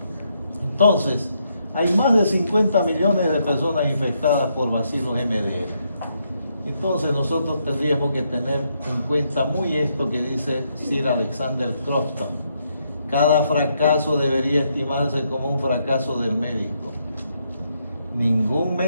Entonces, hay más de 50 millones de personas infectadas por bacilos MDR. Entonces nosotros tendríamos que tener en cuenta muy esto que dice Sir Alexander Crofton. Cada fracaso debería estimarse como un fracaso del médico. Ningún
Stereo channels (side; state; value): both; inverted; correlation -0.77